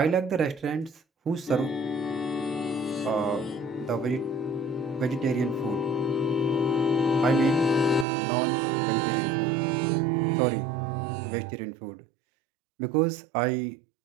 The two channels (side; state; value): left; drops out; at 8.1 s